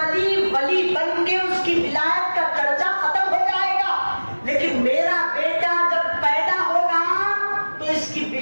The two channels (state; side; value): inverted; both; correlation -1.00